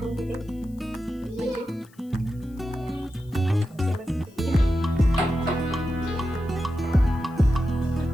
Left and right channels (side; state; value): left; noise; hiss, 30 dB below the sound